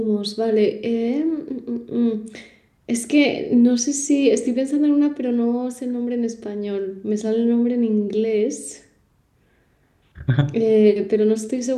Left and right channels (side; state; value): both; identical; correlation 1.00